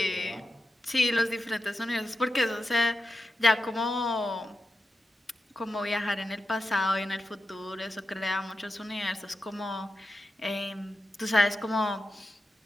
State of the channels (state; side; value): normal; both; correlation 0.90